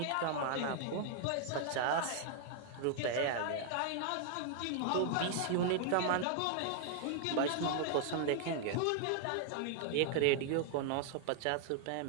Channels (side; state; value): both; different; correlation 0.00